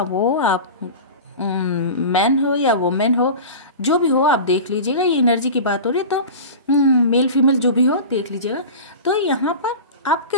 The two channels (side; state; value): both; inverted; correlation -0.32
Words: वो आप मैन हो या वुमेन हो, जो भी हो आप देख लीजिएगा, ये एनर्जी की बात हो रही है तो मेल फीमेल जो भी हो देख लीजिएगा। तो यहाँ पर